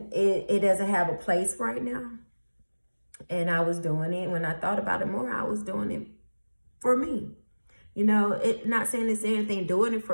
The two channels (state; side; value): inverted; both; correlation -1.00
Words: have a place right now. And I was doing it, when I thought about it more, I was doing it for me. Not saying it's anything doing it